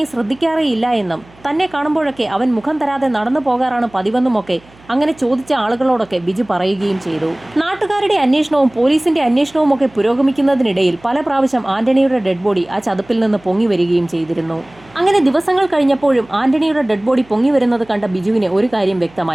ശ്രദ്ധിക്കാറേയില്ല എന്നും തന്നെ കാണുമ്പോഴൊക്കെ അവൻ മുഖം തരാതെ നടന്നു പോകാറാണ് പതിവെന്നുമൊക്കെ അങ്ങനെ ചോദിച്ച ആളുകളോടൊക്കെ ബിജു പറയുകയും ചെയ്തു. നാട്ടുകാരുടെ അന്വേഷണവും പോലീസിന്റെ അന്വേഷണവും ഒക്കെ പുരോഗമിക്കുന്നതിനിടയിൽ പല പ്രാവശ്യം ആന്റണിയുടെ ഡെഡ് ബോഡി ആ ചതുപ്പിൽ നിന്ന് പൊങ്ങി വരികയും ചെയ്തിരുന്നു. അങ്ങനെ ദിവസങ്ങൾ കഴിഞ്ഞപ്പോഴും ആന്റണിയുടെ ഡെഡ് ബോഡി പൊങ്ങി വരുന്നത് കണ്ട ബിജുവിന് ഒരു കാര്യം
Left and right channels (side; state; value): right; noise; hum, 27 dB below the sound